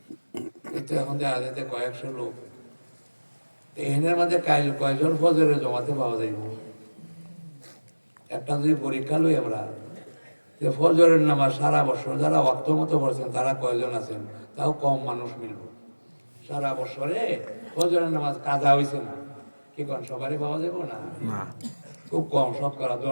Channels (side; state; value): both; inverted; correlation -1.00